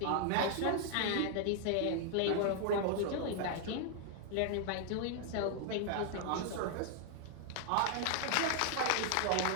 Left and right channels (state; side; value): different; both; correlation 0.00